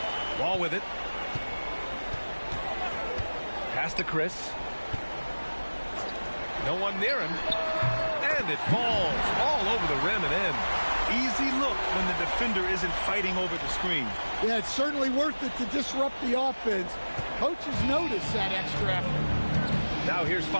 Ball with it. Pass to Chris. No one near him. And it falls all over the rim and in. Easy look when the defender isn't fighting over the screen. Yeah, it's certainly worth it to disrupt the offense. Coaches notice that extra effort. Now here's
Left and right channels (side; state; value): both; inverted; correlation -1.00